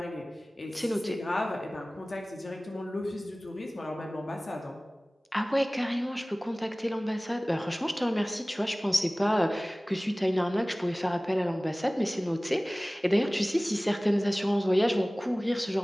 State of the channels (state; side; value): normal; both; correlation 0.98